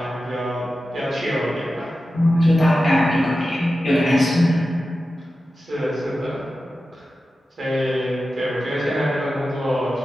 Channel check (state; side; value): normal; both; correlation 0.93